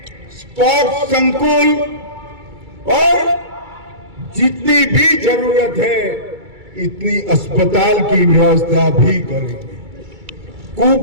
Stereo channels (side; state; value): left; late; 2.3 ms